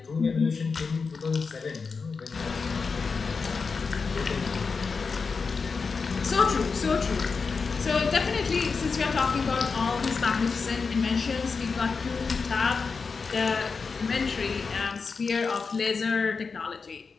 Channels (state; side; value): quieter; right; 4.9 dB